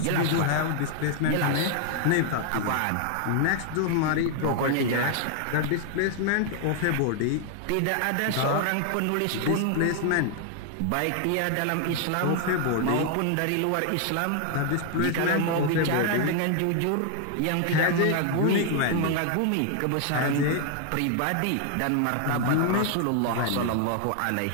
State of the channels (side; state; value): both; different; correlation 0.00